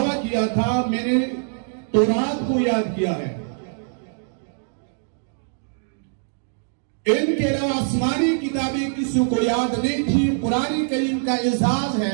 किया था मैंने तौरात को याद किया है। इनके अलावा आसमानी किताबें किसी को याद नहीं थी। कुरान करीम का एजाज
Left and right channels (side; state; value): left; silent; digital silence